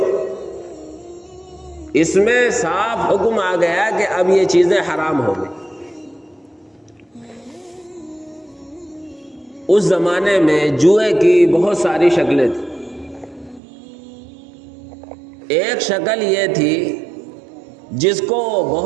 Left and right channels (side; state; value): left; drops out; at 13.6 s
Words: اس میں صاف حکم آ گیا کہ اب یہ چیزیں حرام ہو گئی۔ اس زمانے میں جوئے کی بہت ساری شکلیں تھیں۔ ایک شکل یہ تھی جس کو